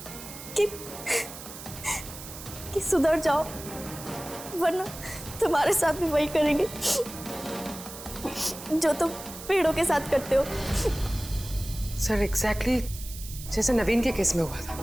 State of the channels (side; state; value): right; noise; hiss, 13 dB below the sound